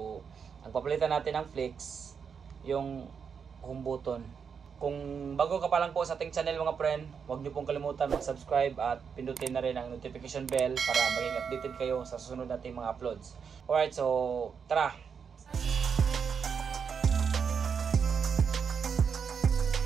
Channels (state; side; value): quieter; left; 6.5 dB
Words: ang papalitan natin ng flex, yung home button. Kung bago ka pa lang po sa ating channel mga friend, huwag niyo pong kalimutan mag-subscribe at pindutin na rin ang notification bell para maging updated kayo sa susunod nating mga uploads. Alright, so tara!